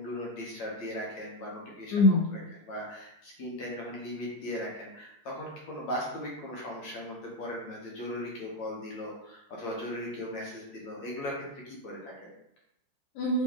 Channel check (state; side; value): late; right; 8.8 ms